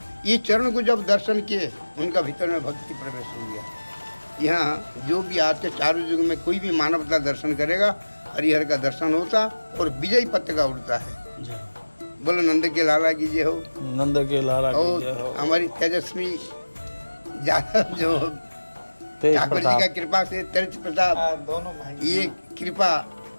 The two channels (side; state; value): both; inverted; correlation -1.00